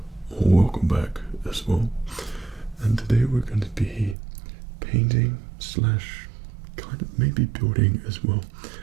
or welcome back as well. And today we're going to be painting slash kind of maybe building as well.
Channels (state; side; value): drops out; left; at 4.2 s